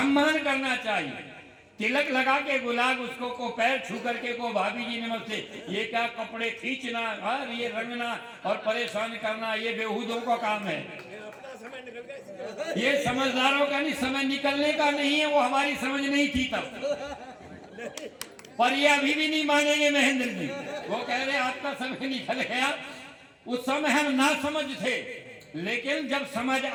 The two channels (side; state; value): both; identical; correlation 1.00